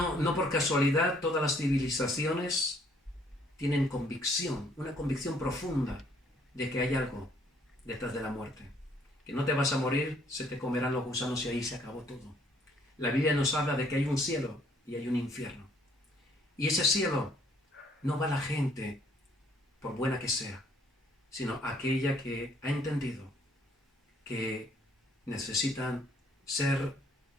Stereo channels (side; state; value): both; normal; correlation 0.63